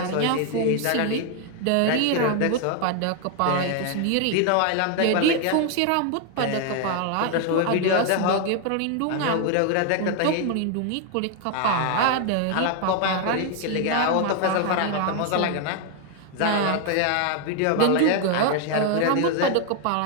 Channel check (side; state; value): both; different; correlation 0.01